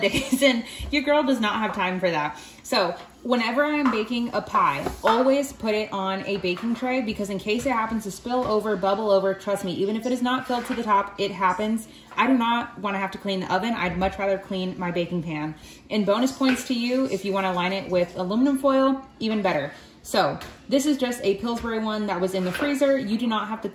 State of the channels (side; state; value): both; identical; correlation 1.00